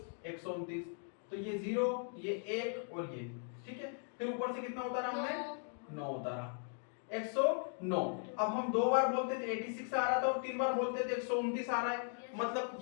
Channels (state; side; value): silent; right; 52 dB below the other